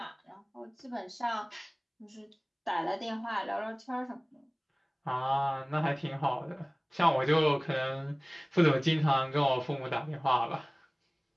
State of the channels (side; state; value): both; identical; correlation 1.00